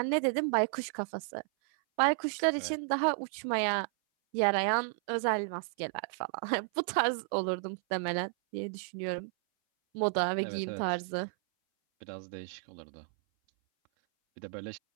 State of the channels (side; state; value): left; silent; 56 dB below the other